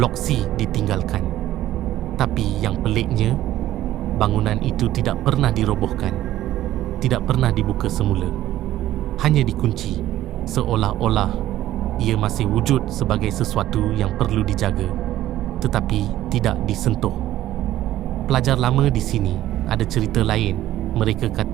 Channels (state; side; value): quieter; left; 13.9 dB